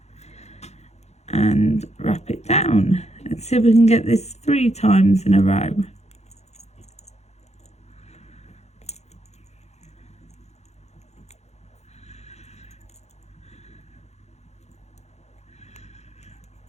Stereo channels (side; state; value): right; late; 0.32 ms